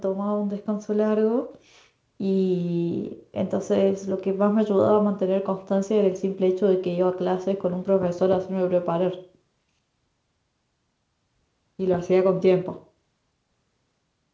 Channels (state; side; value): identical; both; correlation 1.00